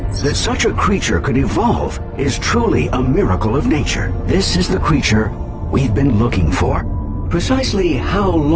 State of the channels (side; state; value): both; identical; correlation 1.00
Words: That such a creature could evolve is truly a miracle of nature. This is the creature we've been looking for. Precisely how